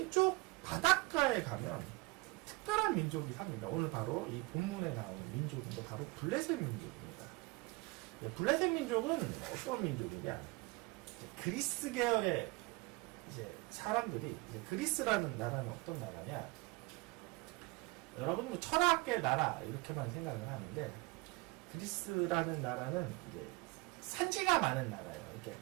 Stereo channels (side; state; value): left; quieter; 24.2 dB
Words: 바닷가에 가면 특별한 민족이 삽니다. 오늘 바로 이 본문에 나오는 민족은 바로 블레셋 민족입니다. 블레셋 민족은 어떤 민족이냐? 그리스 계열의 이제 사람들이, 그리스라는 나라는 어떤 나라냐? 여러분 뭐 철학의 나라 이렇게만 생각을 하는데 그리스라는 나라는 이제 산지가 많은 나라예요. 이렇게